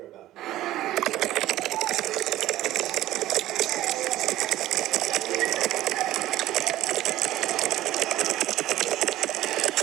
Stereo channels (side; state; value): left; quieter; 14.7 dB